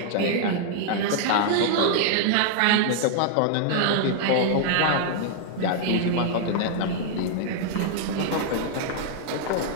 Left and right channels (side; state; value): both; different; correlation -0.01